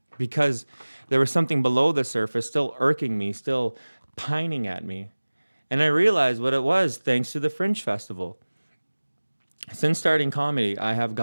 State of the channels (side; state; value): both; inverted; correlation -1.00